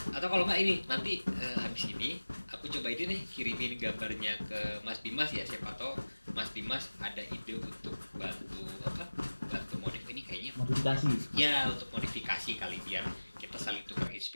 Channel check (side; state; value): both; inverted; correlation -1.00